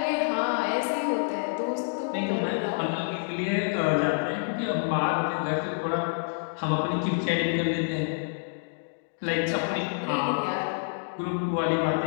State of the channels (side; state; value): right; silent; digital silence